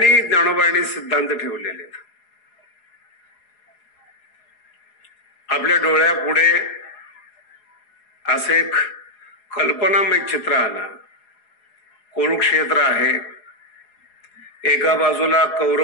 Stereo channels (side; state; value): right; late; 4.7 ms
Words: ज्ञानोबांनी सिद्धांत ठेवलेले आहेत. आपल्या डोळ्यापुढे असे एक कल्पनामय चित्र आलं. कुरुक्षेत्र आहे, एका बाजूला